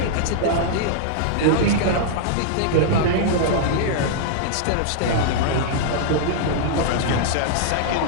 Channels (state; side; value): different; both; correlation -0.01